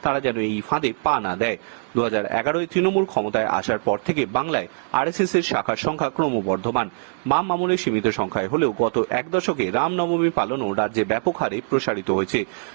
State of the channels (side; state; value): left; silent; 64 dB below the other